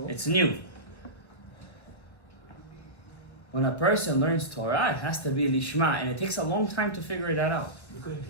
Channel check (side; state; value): right; late; 1.3 ms